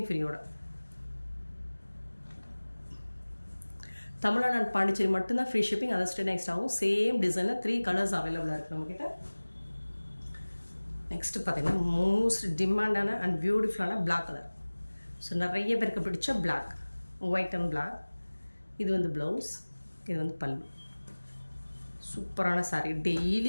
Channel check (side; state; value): both; inverted; correlation -1.00